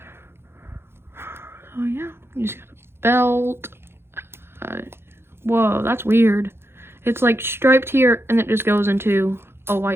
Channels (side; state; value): left; late; 0.12 ms